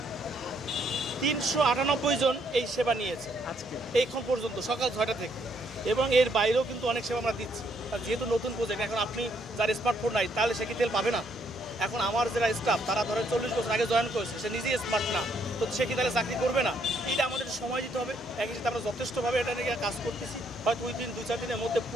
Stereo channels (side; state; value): both; normal; correlation 0.71